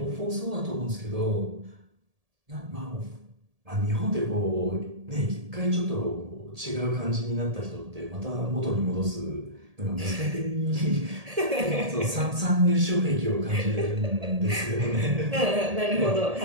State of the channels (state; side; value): late; left; 1.7 ms